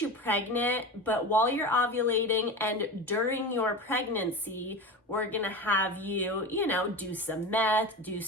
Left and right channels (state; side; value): normal; both; correlation 0.28